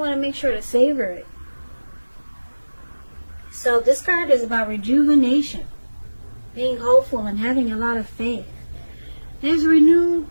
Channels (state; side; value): inverted; both; correlation -1.00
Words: want to make sure to savor it. So this card is about rejuvenation, being hopeful and having a lot of faith. There's